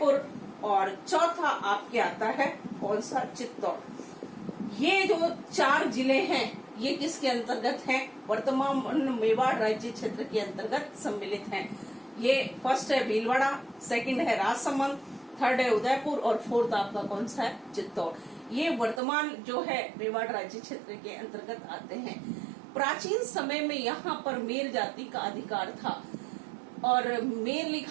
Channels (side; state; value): left; drops out; at 19.0 s